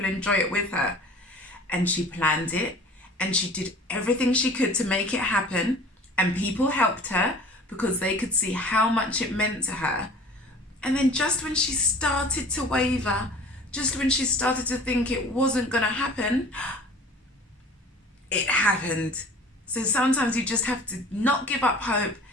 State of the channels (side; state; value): both; normal; correlation 0.45